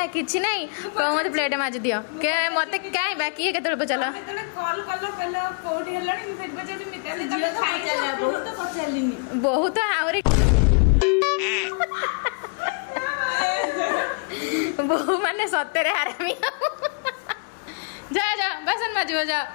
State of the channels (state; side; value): quieter; right; 38.8 dB